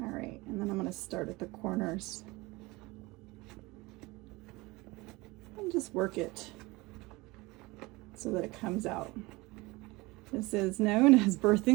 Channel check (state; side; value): quieter; left; 22.7 dB